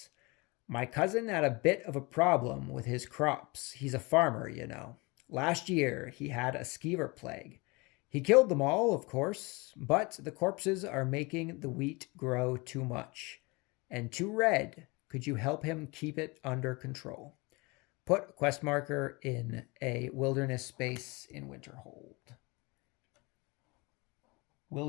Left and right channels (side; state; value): right; quieter; 26.3 dB